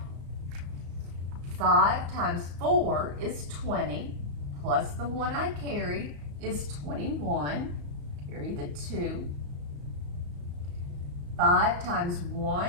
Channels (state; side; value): late; left; 34 ms